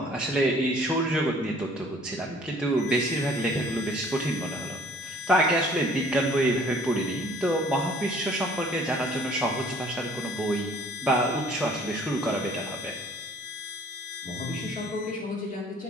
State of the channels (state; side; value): normal; both; correlation 0.55